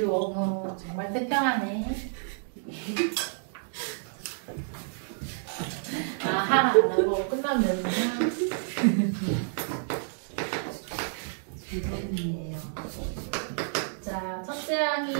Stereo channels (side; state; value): left; silent; digital silence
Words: 원우 정말 태평하네. 아, 하나 안 하고 끝나면 되는구나. 이번이에요. 자, 첫째